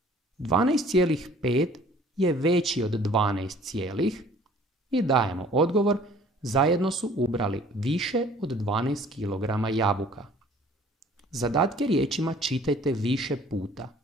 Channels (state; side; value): normal; both; correlation 0.53